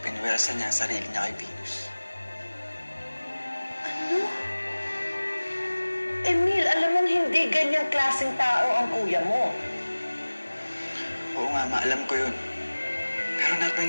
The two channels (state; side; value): inverted; both; correlation -1.00